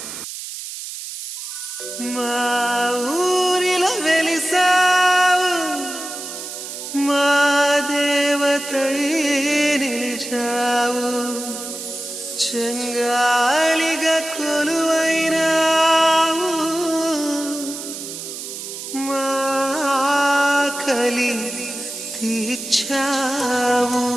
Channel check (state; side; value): noise; right; hiss, 9 dB below the sound